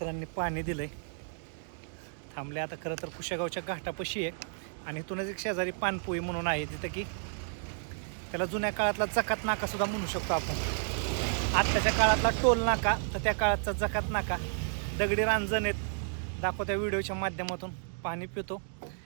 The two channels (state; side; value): silent; left; digital silence